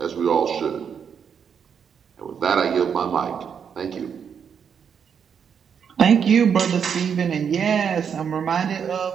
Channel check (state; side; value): quieter; left; 7.3 dB